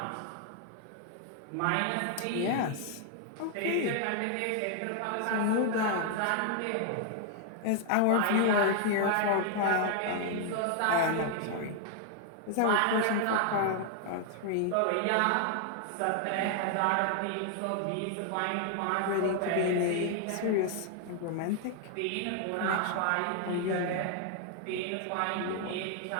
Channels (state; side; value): different; both; correlation 0.00